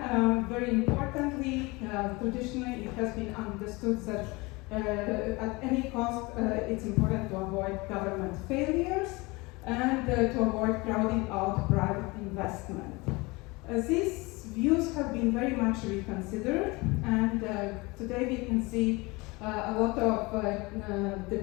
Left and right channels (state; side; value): quieter; right; 24.5 dB